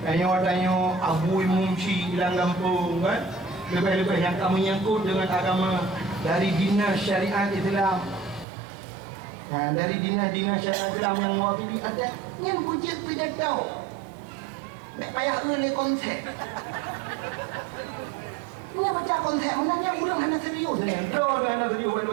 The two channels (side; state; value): left; drops out; at 8.5 s